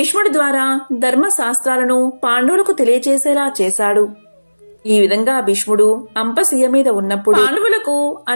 ద్వారా ధర్మశాస్త్రాలను పాండవులకు తెలియచేసేలా చేశాడు. ఈ విధంగా భీష్ముడు అంపశయ్య మీద ఉన్నప్పుడు పాండవులకు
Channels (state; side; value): inverted; both; correlation -1.00